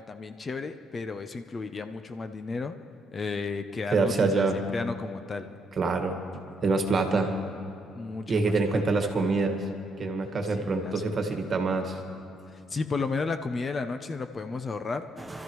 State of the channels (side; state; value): both; normal; correlation 0.75